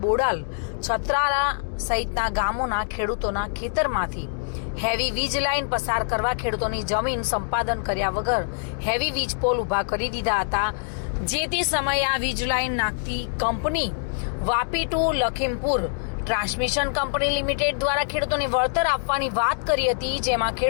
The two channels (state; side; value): silent; right; digital silence